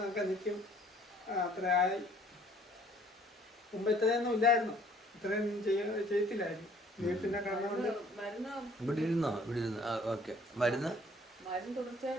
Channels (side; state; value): both; normal; correlation 0.58